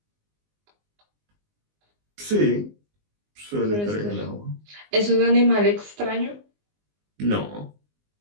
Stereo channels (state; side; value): late; left; 19 ms